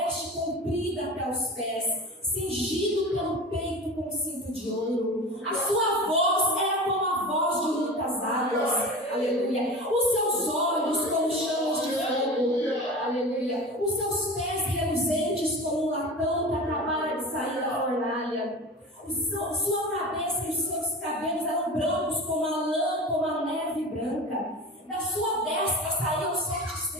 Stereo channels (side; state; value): both; normal; correlation 0.32